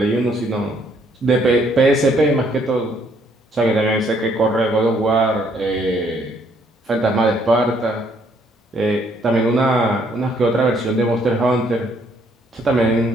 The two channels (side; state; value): both; normal; correlation 0.67